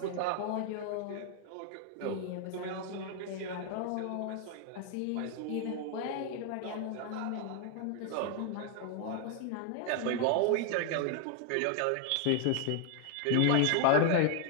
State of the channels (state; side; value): different; both; correlation 0.00